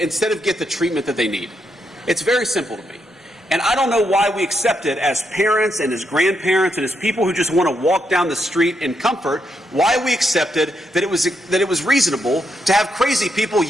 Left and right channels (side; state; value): both; normal; correlation 0.80